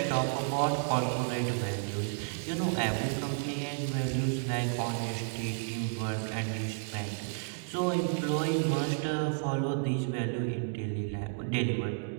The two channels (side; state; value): left; silent; digital silence